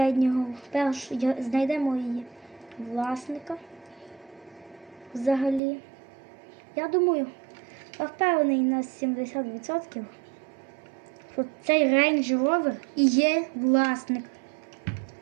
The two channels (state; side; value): drops out; left; at 5.6 s